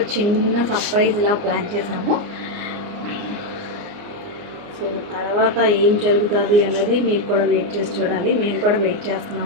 చిన్న సర్ప్రైజ్ ఇలా ప్లాన్ చేసాము. సో తర్వాత ఏం జరుగుతుంది అనేది మీరు కూడా వెయిట్ చేసి చూడాలి. మేము కూడా వెయిట్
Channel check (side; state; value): left; late; 29 ms